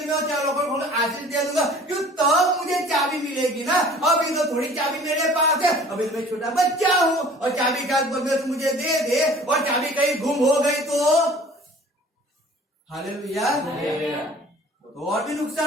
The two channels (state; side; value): normal; both; correlation 0.48